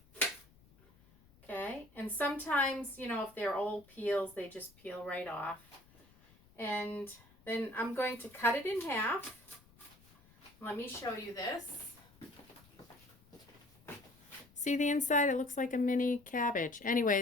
Okay, and sometimes, if they're old peels, they just peel right off. And then I'm going to cut it in half. Let me show you this. See the inside? It looks like a mini cabbage.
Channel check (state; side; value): noise; left; rumble, 28 dB below the sound